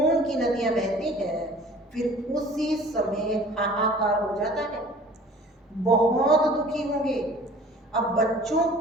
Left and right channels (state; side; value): normal; both; correlation 0.48